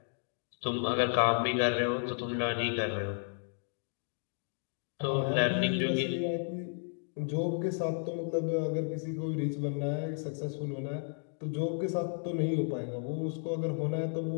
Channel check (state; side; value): silent; right; 56 dB below the other